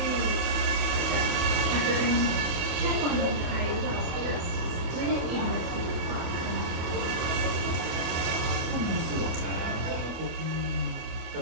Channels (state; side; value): late; left; 25 ms